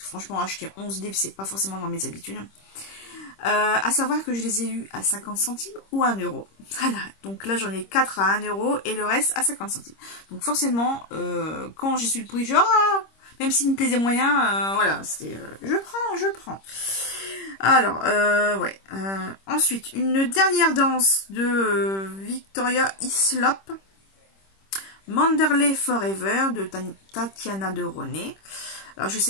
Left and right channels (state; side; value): late; right; 26 ms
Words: franchement, acheter 11 livres, c'est pas forcément dans mes habitudes. À savoir que je les ai eus à 50 centimes ou à 1 euro. Voilà, donc là j'en ai 4 à 1 euro et le reste à 50 centimes. Donc forcément, quand j'ai su le prix, même s'il me plaisait moyen, voilà, c'était je prends. Alors, ouais. Ensuite, une dernière danse de Victoria Hislop. Manderley Forever de Tatiana de René. Alors, je